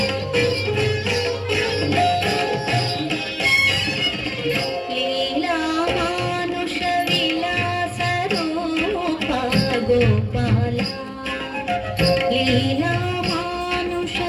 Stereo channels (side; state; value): both; identical; correlation 1.00